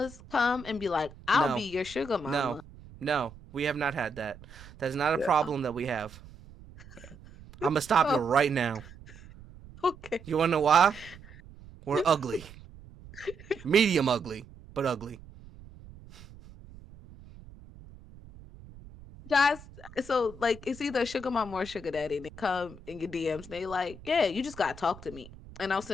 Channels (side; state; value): right; noise; rumble, 19 dB below the sound